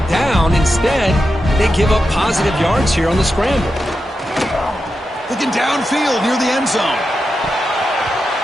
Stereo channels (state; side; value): normal; both; correlation 0.89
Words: down. Instead, they give up positive yards here on the scramble. Looking downfield near the end zone.